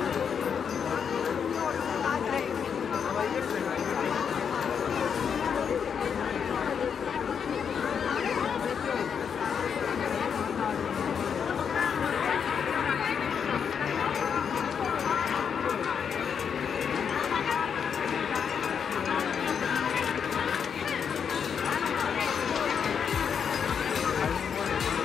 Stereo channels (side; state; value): right; quieter; 7.1 dB